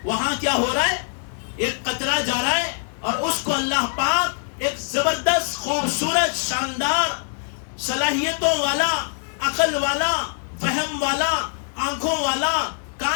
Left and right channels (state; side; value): silent; right; 59 dB below the other